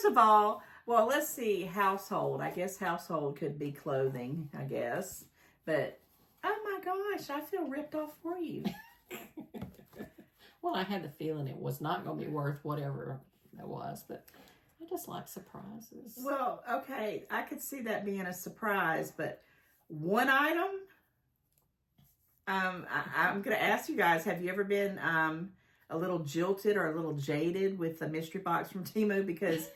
of all, well, let's see, household. I guess household could be clothing, I guess. But, oh my gosh, I feel ripped off for you. Well, I had the feeling it was not going to be worth whatever it was, but I just like surprises. Well, okay, I could see that being a surprise, but one item, I'm going to ask you guys, have you ever been a little jilted or a little jaded with the mystery box from Temu, because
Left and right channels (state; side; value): identical; both; correlation 1.00